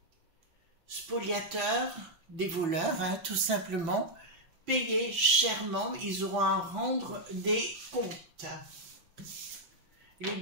spoliateurs, des voleurs, hein, tout simplement, payer chèrement, ils auront à rendre des comptes. Il est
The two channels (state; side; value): late; left; 6.0 ms